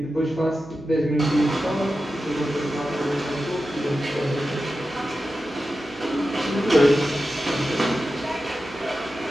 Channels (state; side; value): noise; left; hum, 21 dB below the sound